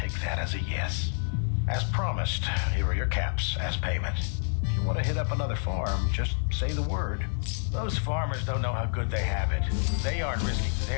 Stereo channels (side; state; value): right; silent; 59 dB below the other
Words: that as a yes. As promised, here are your caps as payment. If you want to hit up another farm, just say the word. Those farmers don't know how good they have it. They aren't risking